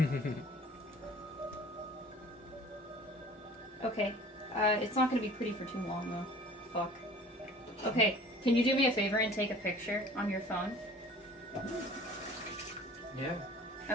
Okay. It's not gonna be pretty for too long though. Fuck. Okay, can you do me a favor and take a picture on your phone? Yeah.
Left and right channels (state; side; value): normal; both; correlation 0.47